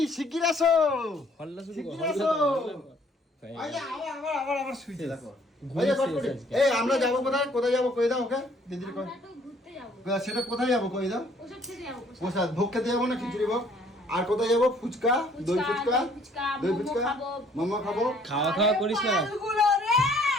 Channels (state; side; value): normal; both; correlation 0.60